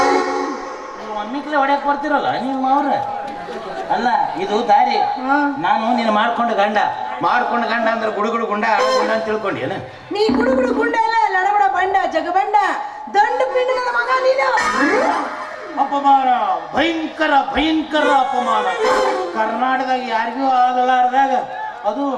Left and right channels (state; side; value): identical; both; correlation 1.00